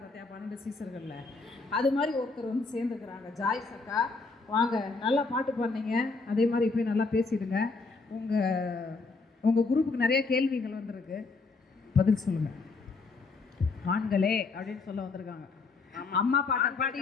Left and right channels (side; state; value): right; quieter; 4.0 dB